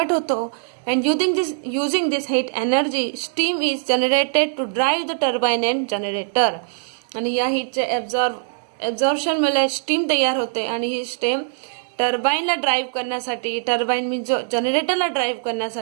होतो. And using this heat energy steam is generated to drive the turbine and generator. आणि या हीटचे ॲब्झॉर्प्शनमुळे स्टीम तयार होते आणि ही स्टीम टर्बाईनला ड्राईव्ह करण्यासाठी, टर्बाईन मीन्स जनरेटरला ड्राईव्ह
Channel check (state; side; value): silent; left; digital silence